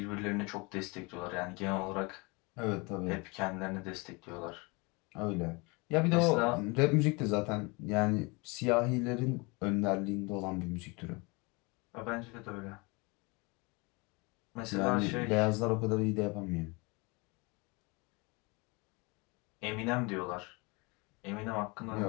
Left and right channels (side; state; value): right; quieter; 27.7 dB